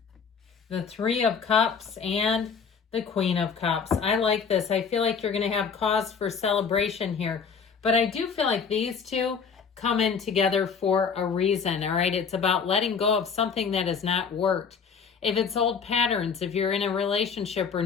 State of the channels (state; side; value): quieter; right; 6.1 dB